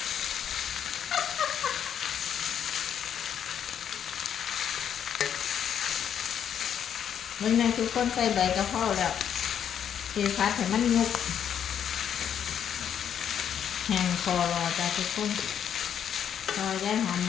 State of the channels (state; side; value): quieter; right; 8.9 dB